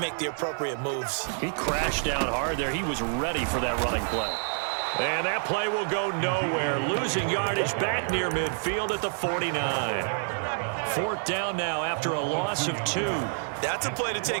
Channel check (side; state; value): left; silent; 59 dB below the other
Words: make the appropriate moves. He crashed down hard there. He was ready for that running play. And that play will go nowhere. Losing yardage back near midfield at the 49. 4th down now after a loss of 2. That's a play to